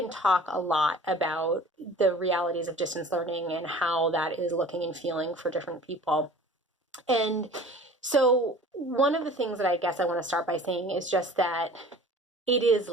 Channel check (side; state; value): both; normal; correlation 0.44